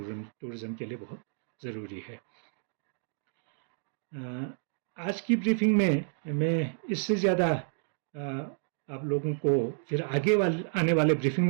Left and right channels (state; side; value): silent; left; digital silence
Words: के लिए बहुत ज़रूरी है। आज की ब्रीफिंग में मैं इससे ज़्यादा आप लोगों को फिर आने वाले ब्रीफिंग